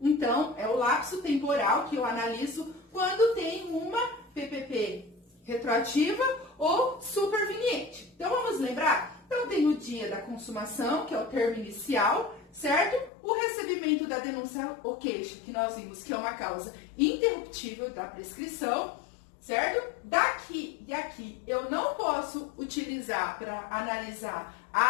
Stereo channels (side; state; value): right; drops out; at 13.1 s